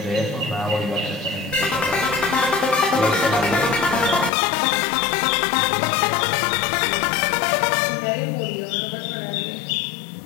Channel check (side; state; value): right; drops out; at 4.3 s